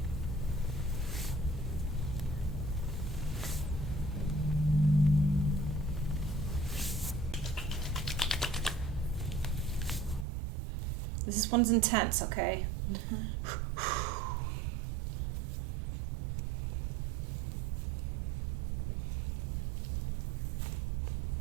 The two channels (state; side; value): drops out; left; at 10.2 s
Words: This one's intense, okay? Mm-hmm.